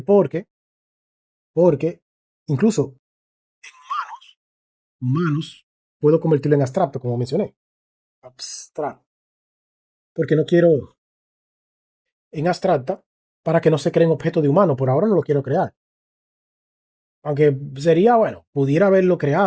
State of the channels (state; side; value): identical; both; correlation 1.00